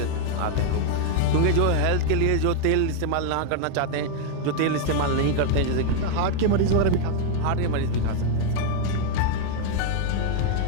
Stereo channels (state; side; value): different; both; correlation 0.00